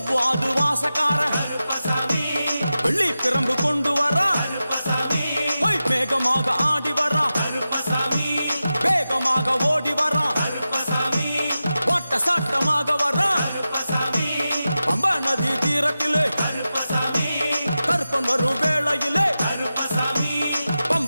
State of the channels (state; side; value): inverted; both; correlation -0.93